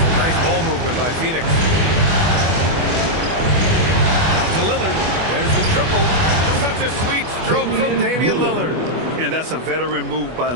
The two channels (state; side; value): late; left; 24 ms